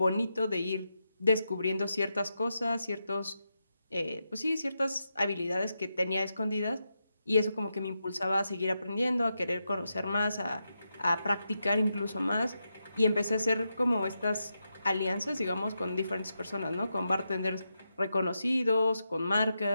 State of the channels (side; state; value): both; inverted; correlation -0.86